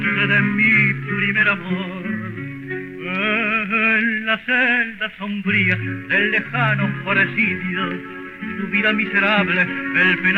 de mi primer amor. En la celda sombría del lejano presidio, su vida miserable el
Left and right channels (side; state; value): both; identical; correlation 1.00